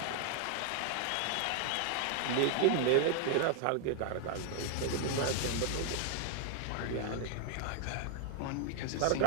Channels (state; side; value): different; both; correlation 0.00